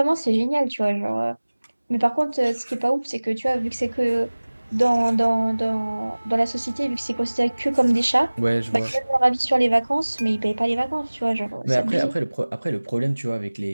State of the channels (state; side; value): inverted; both; correlation -1.00